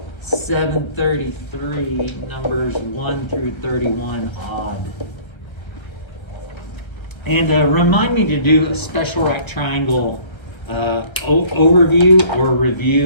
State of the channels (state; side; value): late; right; 1.3 ms